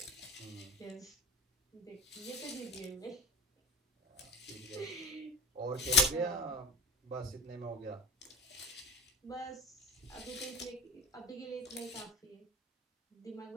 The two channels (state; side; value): normal; both; correlation 0.34